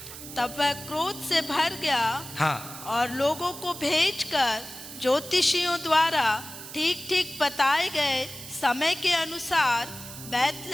तब वह क्रोध से भर गया। हाँ, और लोगों को भेजकर ज्योतिषियों द्वारा ठीक ठीक बताए गए समय के अनुसार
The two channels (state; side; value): noise; right; hiss, 13 dB below the sound